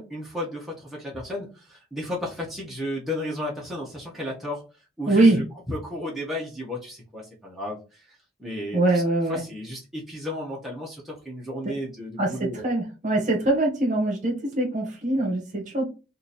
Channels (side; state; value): both; normal; correlation 0.60